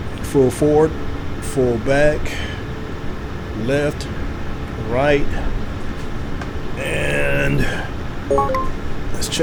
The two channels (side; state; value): both; identical; correlation 1.00